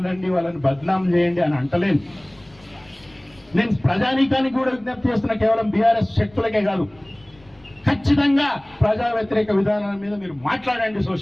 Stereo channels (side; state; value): left; noise; rumble, 29 dB below the sound